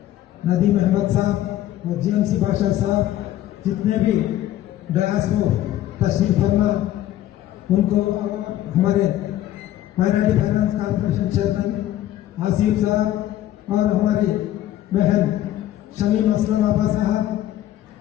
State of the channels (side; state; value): right; quieter; 13.1 dB